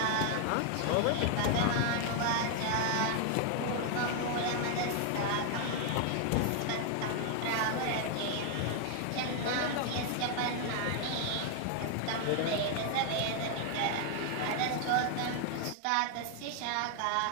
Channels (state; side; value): different; both; correlation 0.00